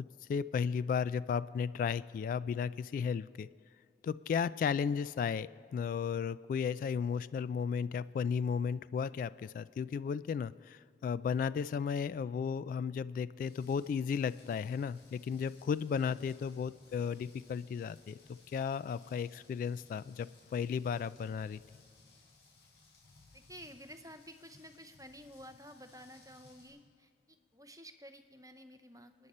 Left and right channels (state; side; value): quieter; right; 6.3 dB